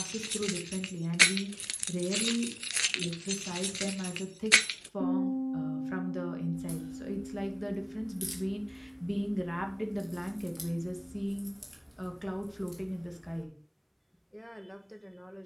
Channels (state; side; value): identical; both; correlation 1.00